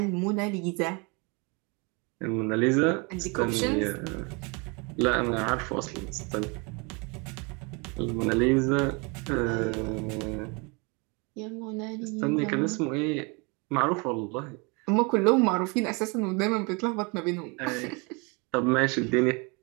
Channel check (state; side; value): quieter; left; 30.3 dB